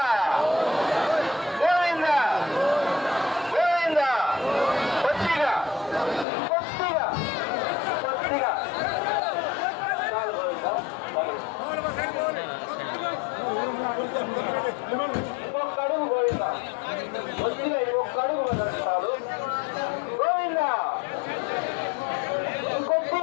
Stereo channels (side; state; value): right; drops out; at 6.2 s